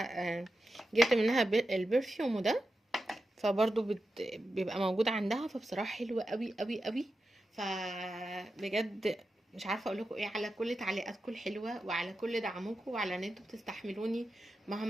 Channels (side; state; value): both; normal; correlation 0.90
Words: جبت منها البرفيوم ده، فبرضو بيبقى موجود عندها، فبصراحة حلوة قوي قوي قوي. فبجد مش عارفة اقول لكم ايه على كل تعليقاتكم الحلوة، وعلى كل دعمكم، وعلى ان انتوا بتستحملوني